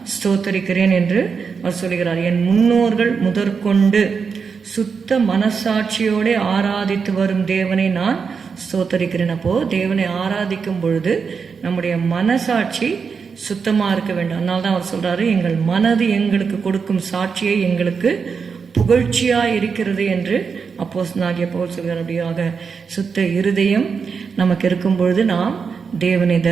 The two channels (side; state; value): left; quieter; 5.7 dB